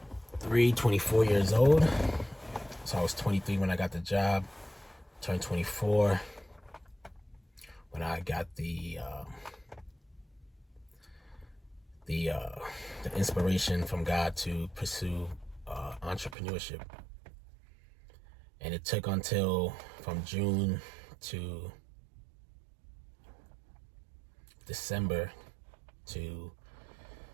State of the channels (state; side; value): drops out; left; at 16.4 s